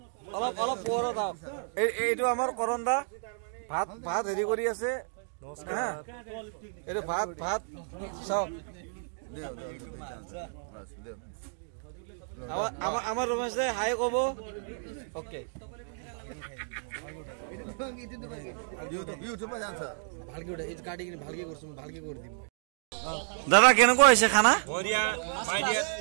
অলপ পোহৰত আহক। এইটো আমাৰ কৰণ দা ভাত হেৰি কৰি আছে। এইটো ভাত চাওক। আমাৰ ৰমেশ দাই হাই কব। অ'কে দাদা কেনেকুৱা হৈছে খানা?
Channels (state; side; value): silent; left; digital silence